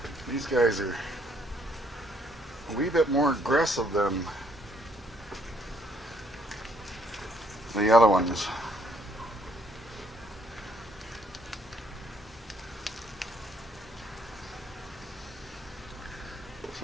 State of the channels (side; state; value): both; normal; correlation 0.67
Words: these guys are a wee bit more aggressive than the other ones. So